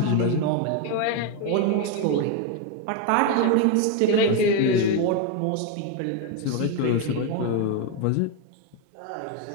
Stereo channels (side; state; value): both; different; correlation 0.02